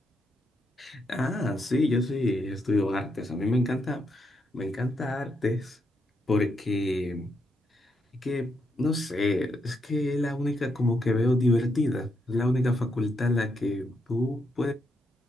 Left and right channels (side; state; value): both; normal; correlation 0.80